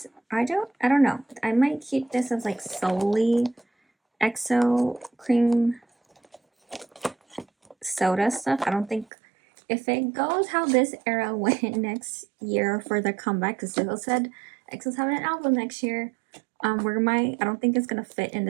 I don't know. I might keep this as like solely EXO cream soda stuff. I don't think if it goes how this era went next year for the comeback, because Zico said EXO's having an album next year. I don't think it's gonna fit in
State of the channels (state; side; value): drops out; left; at 9.1 s